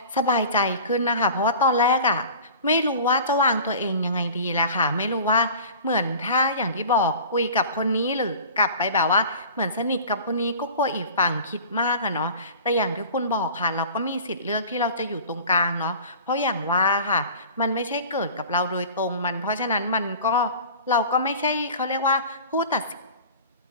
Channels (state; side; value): inverted; both; correlation -0.41